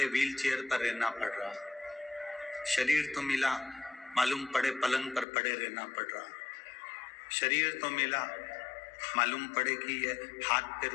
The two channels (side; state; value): right; drops out; at 5.2 s